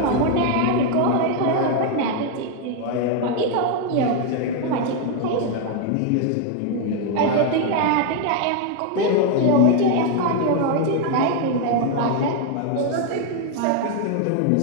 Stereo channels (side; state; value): both; different; correlation 0.01